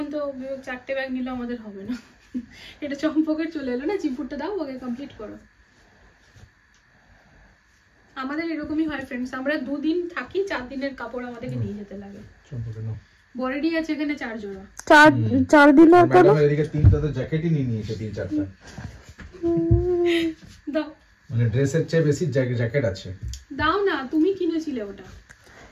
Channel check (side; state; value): both; identical; correlation 1.00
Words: তো 4টে ব্যাগ নিলে আমাদের হবে না। এটা চম্পকের চলে এলো না, চিম্পুরটা দাও ওকে কমপ্লিট করো। আমাদের এরকমই হয় ফ্রেন্ডস, আমরা 2 দিন থাকি, 4 দিনের কাপড় আমাদেরকে নিয়ে যেতে লাগে। চম্পকে নাও, বরেডি আছে এখানে 4 জোড়া, 4 দিনের পরে এদিকে 3টা তো জ্যাকেটই নিয়ে নিয়েছে, 3-4টা দাও, মানে ড্রেসের চেয়ে বেশি জ্যাকেট আছে। দাও না, তুমি কিনেছিলে ওটা।